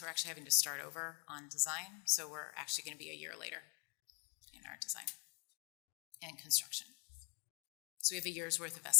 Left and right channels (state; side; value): quieter; right; 32.7 dB